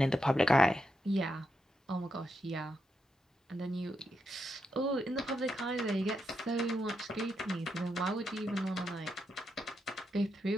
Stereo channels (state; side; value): normal; both; correlation 0.84